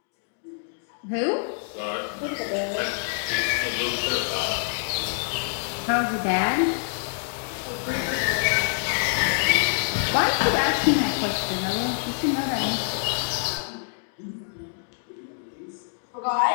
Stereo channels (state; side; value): silent; right; digital silence